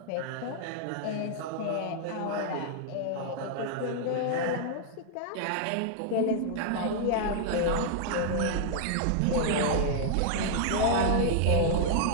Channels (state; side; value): different; both; correlation -0.01